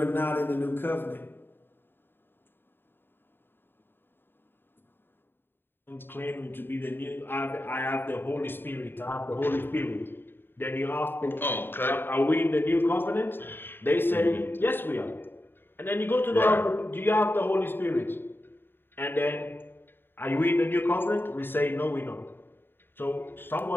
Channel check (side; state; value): right; late; 0.10 ms